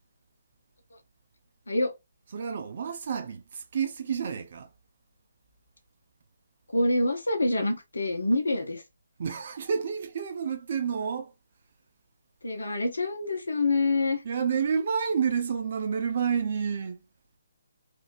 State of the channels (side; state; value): both; inverted; correlation -0.81